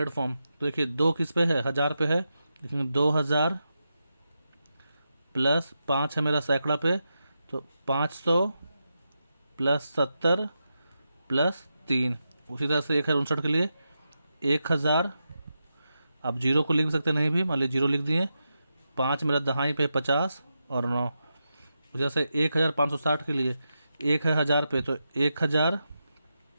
फॉर्म। तो देखिए 2 किस पे है, 1000 पे है, लिखेंगे 2000 प्लस 5 है मेरा सैकड़ा पे, तो 500 प्लस 70 प्लस 3। उसी तरह से 1059 के लिए 1000, आप 0 को लिख भी सकते नहीं भी, मान लीजिए 0 लिख दिए। 5 मेरा दहाई पे 50 और 9। उसी तरह से 1560 के लिए 1 है 1000 पे, तो 1000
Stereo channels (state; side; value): inverted; both; correlation -0.88